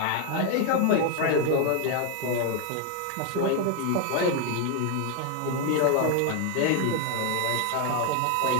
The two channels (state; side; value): different; both; correlation 0.01